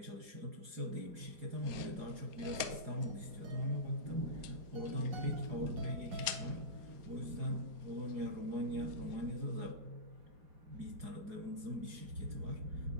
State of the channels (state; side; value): late; left; 4.4 ms